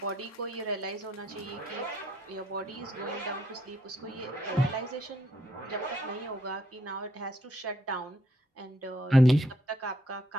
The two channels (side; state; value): both; normal; correlation 0.72